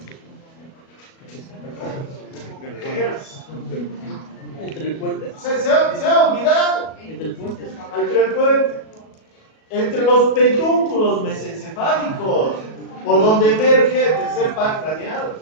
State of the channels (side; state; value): right; late; 37 ms